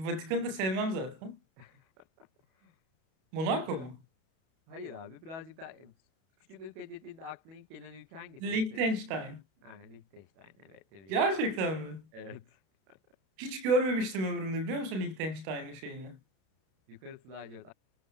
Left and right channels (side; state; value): left; late; 31 ms